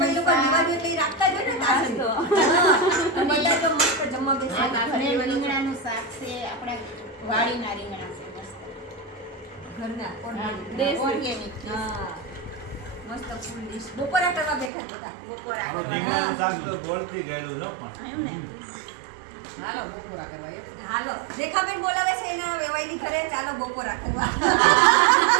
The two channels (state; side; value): drops out; left; at 14.7 s